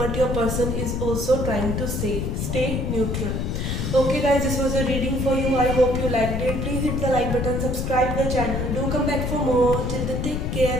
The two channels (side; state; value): left; noise; rumble, 1 dB below the sound